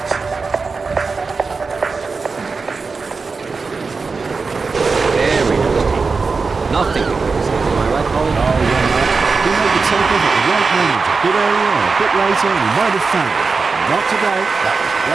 Nothing to criticize, am I right, Colin? Oh, yeah, Mark. He made the takeoff at the right moment, a bit earlier or a bit later, and he might have found it. But not today. That was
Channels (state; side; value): quieter; left; 4.5 dB